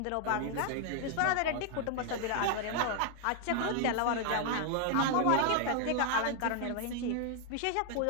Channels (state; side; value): different; both; correlation 0.00